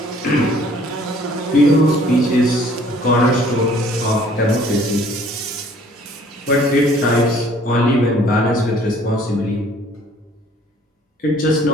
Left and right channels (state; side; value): normal; both; correlation 0.56